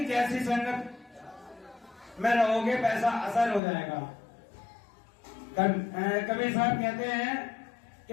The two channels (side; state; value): right; drops out; at 3.6 s